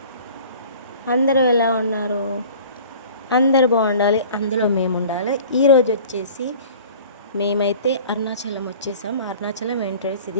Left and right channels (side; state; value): both; inverted; correlation -0.45